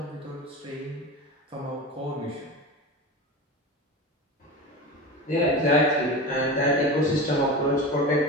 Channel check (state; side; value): normal; both; correlation 0.28